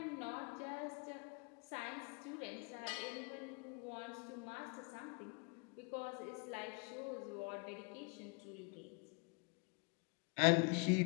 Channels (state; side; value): quieter; right; 33.8 dB